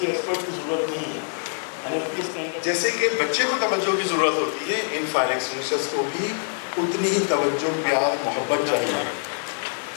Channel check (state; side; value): silent; right; digital silence